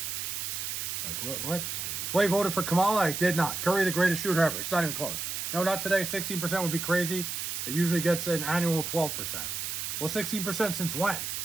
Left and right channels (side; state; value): right; noise; hiss, 3 dB below the sound